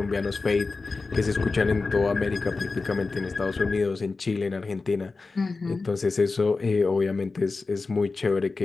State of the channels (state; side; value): quieter; right; 3.9 dB